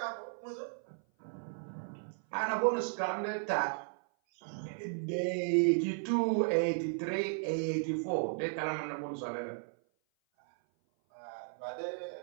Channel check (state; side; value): silent; left; 54 dB below the other